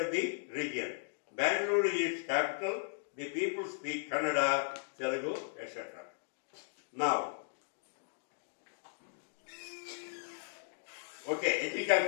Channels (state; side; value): silent; right; digital silence